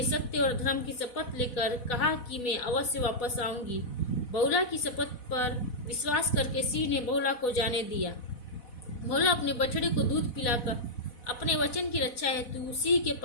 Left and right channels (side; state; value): right; late; 4.1 ms